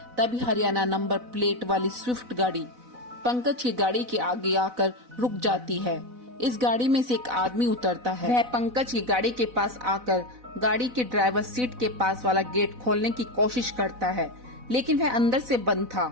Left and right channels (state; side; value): late; left; 4.0 ms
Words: तभी हरियाणा नंबर प्लेट वाली स्विफ्ट गाड़ी पंकज की गाड़ी के आगे आकर रुक जाती है। इस गाड़ी में से एक आदमी उतरता है। वह पंकज की गाड़ी के पास आकर गाड़ी के ड्राइवर सीट के पास वाला गेट खोलने की कोशिश करता है, लेकिन वह अंदर से बंद था,